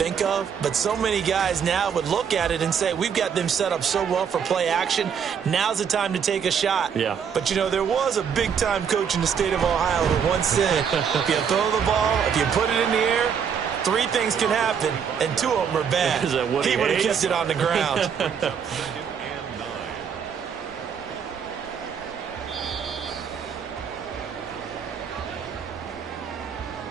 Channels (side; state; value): left; quieter; 7.3 dB